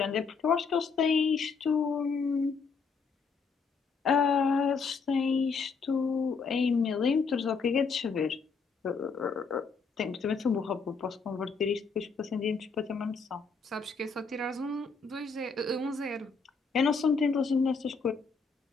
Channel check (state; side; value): quieter; right; 5.0 dB